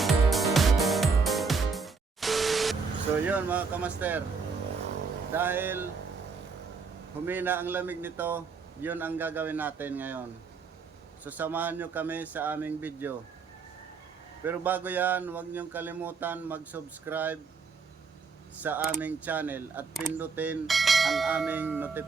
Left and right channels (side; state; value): left; quieter; 5.0 dB